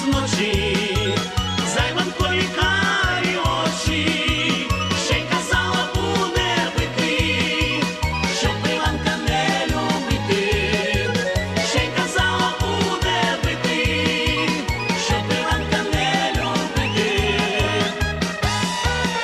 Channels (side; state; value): both; identical; correlation 1.00